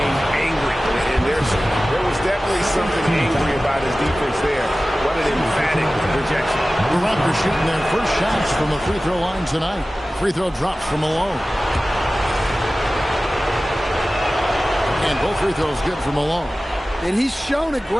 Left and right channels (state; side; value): normal; both; correlation 0.96